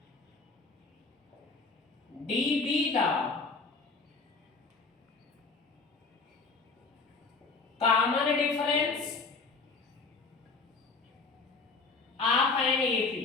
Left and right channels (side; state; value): right; quieter; 4.2 dB